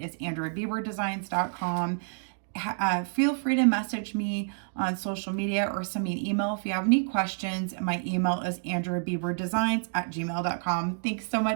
is andriabieberdesigns.com. Feel free to message me on social media or send me an email if you have any questions. My email is andriabieberdesigns@gmail.com. Thanks so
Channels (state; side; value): silent; left; 59 dB below the other